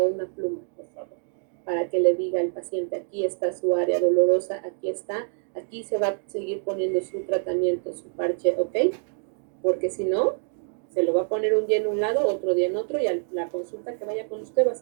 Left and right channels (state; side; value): silent; left; 56 dB below the other